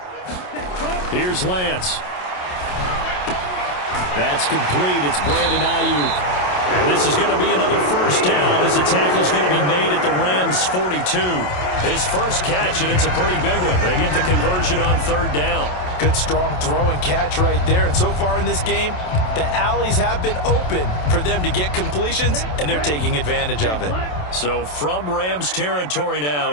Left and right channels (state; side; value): late; right; 27 ms